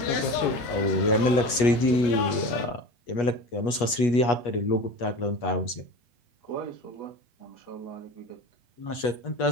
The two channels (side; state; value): right; late; 8.3 ms